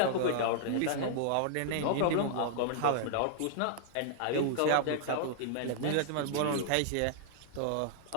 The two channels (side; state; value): both; different; correlation -0.01